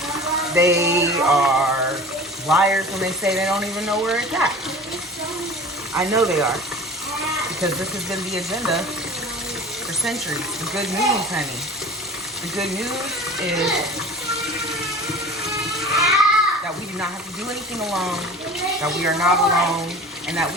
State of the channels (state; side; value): normal; both; correlation 0.39